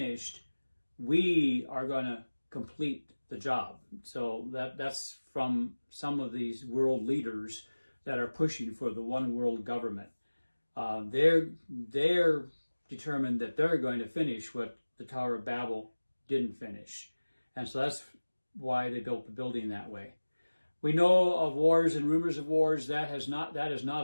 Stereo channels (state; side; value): inverted; both; correlation -1.00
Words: we are going to complete the job. So that's from some of these world leaders that are pushing for the one world government. They're determined that they're going to finish what the Tower of Babel didn't finish. And so that's why they built the building that way. We know of wars and rumors of wars. That is not